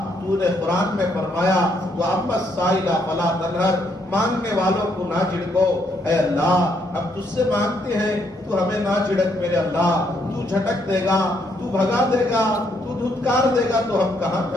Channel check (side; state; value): both; normal; correlation 0.73